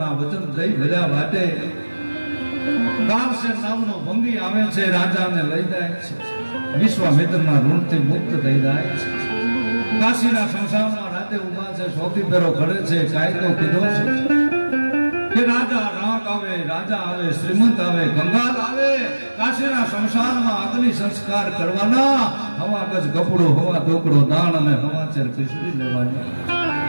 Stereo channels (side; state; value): both; inverted; correlation -1.00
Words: વચન જઈ ભર્યા વાટે. કારસેન નામનો ભંગી આવે છે, રાજાને લઈ જાય છે, વિશ્વામિત્રના ઋણથી મુક્ત થઈ જાય છે. કાશીના શમશાનમાં રાતે ઉભા છે, સૌથી પેરો ઘડે છે. કાયદો કીધો છે કે રાજા રાક આવે, રાજા આવે, શ્રીમંત આવે, કંગાલ આવે, કાશીના શમશાનમાં અગ્નિ સંસ્કાર કરવાના. હવા ગજ કપડો, હવા ઢોકળો, દાણ અને હવાચેર ખીચડી લેવાની.